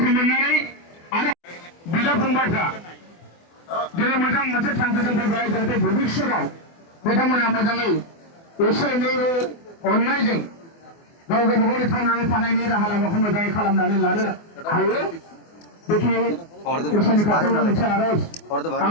मोननानै आरो बिदा फंबायफ्रा दिनै मोजां मोनसे थांखिजों फैबाय जाहाथे भबिष्यताव बिथांमोना मोजाङै एसे एनै अननायजों गाव गावबागावनि थांनानै थानायनि राहा लामाखौ मोजाङै खालामनानै लानो हायो बेखि इसोरनि खाथियाव मोनसे आरज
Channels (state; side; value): late; right; 24 ms